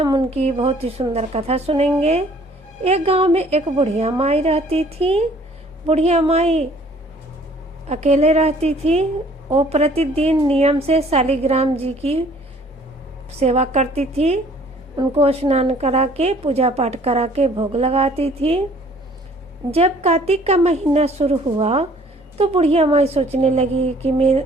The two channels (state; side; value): normal; both; correlation 0.56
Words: उनकी बहुत ही सुंदर कथा सुनेंगे। एक गांव में एक बुढ़िया माई रहती थी। बुढ़िया माई अकेले रहती थी। वो प्रतिदिन नियम से शालिग्राम जी की सेवा करती थी। उनको स्नान करा के पूजा पाठ करा के भोग लगाती थी। जब कार्तिक का महीना शुरू हुआ तो बुढ़िया माई सोचने लगी कि